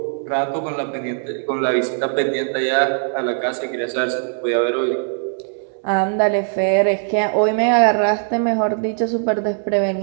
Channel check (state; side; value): silent; left; 66 dB below the other